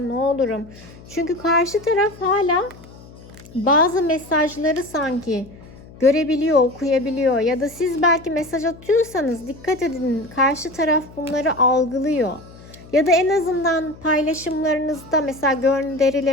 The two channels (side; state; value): left; noise; hum, 20 dB below the sound